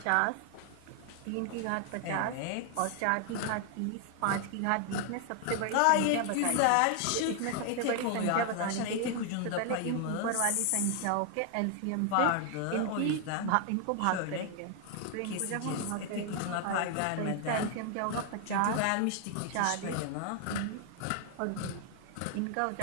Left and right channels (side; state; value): both; different; correlation 0.00